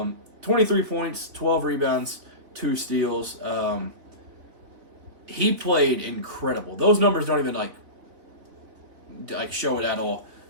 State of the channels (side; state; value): left; late; 3.4 ms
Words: 23 points, 12 rebounds, 2 steals. He played incredible. Those numbers don't even like show it at all.